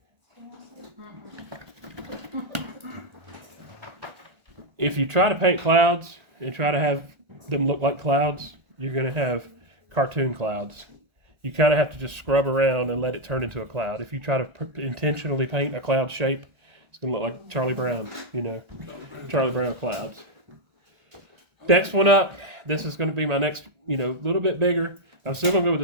If you try to paint clouds and try to have them look like clouds, you're going to have cartoon clouds. You kind of have to just scrub around and let it turn into a cloud. If you try to intentionally paint a cloud shape, it's going to look like Charlie Brown, Charlie Brown clouds. Next one up, this is going to be my next, little bit bigger. I'm still going to go with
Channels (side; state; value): left; late; 1.4 ms